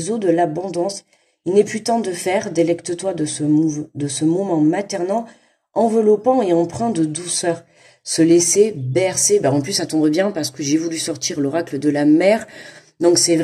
eaux de l'abondance. Il n'est plus temps de faire, délecte-toi de ce moment maternant, enveloppant et empreint de douceur. Se laisser bercer, en plus ça tombe bien parce que j'ai voulu sortir l'oracle de la mer. Donc c'est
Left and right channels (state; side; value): identical; both; correlation 1.00